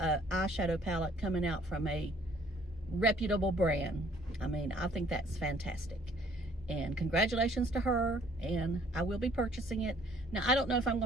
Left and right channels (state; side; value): normal; both; correlation 0.60